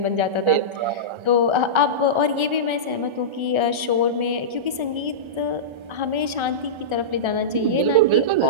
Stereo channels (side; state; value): left; late; 1.3 ms